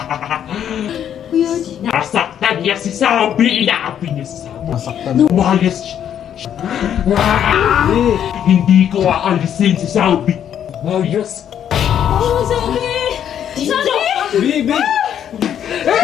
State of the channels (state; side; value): quieter; right; 9.5 dB